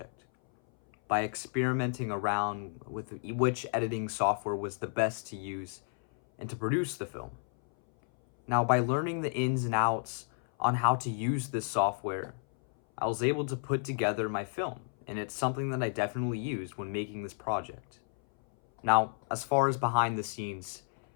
by experimenting around with which editing software was the best to use and to produce the film. Now, by learning the ins and outs on how to use this software, I was able to put together my film, and it's something that I definitely used when making this project. Now, as far as behind the scenes,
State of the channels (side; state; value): right; silent; 57 dB below the other